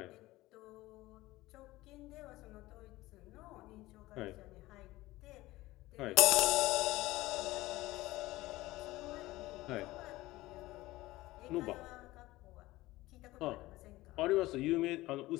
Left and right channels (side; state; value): right; quieter; 18.3 dB